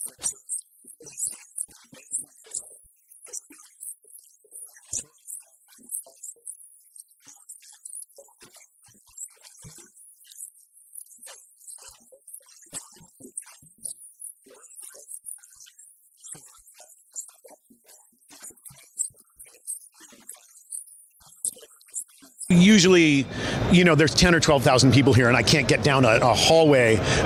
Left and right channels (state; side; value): identical; both; correlation 1.00